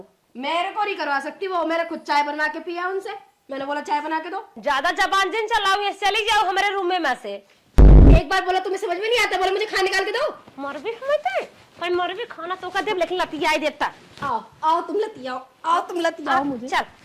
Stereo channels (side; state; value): both; identical; correlation 1.00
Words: मेरे को नहीं करवा सकती वो, मेरे खुद चाय बनवा के पिया उनसे, मैंने बोला चाय बना के दो। ज्यादा जबान जिन चलाओ, ये चली जाओ हमारे रूम में से। एक बार बोला तुम्हें समझ में नहीं आता, बोला मुझे खाना निकाल के दो। मर भी हमें पर मर भी खाना तो का देव, लेकिन लतिया देता। आओ आओ तुम लतियाओ, आओ तुम लतियाओ मुझे। चल